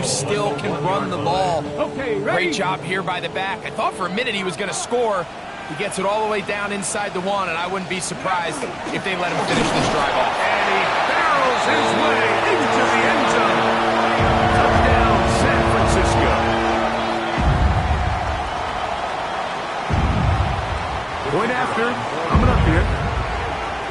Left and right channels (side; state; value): both; identical; correlation 1.00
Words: still can run the ball. Okay, ready? Great job here by the back. I thought for a minute he was going to score. He gets it all the way down inside the 1, and I wouldn't be surprised if they let him finish this drive off. And he barrels his way into the end zone. Touchdown, San Francisco. Point after, coming up here.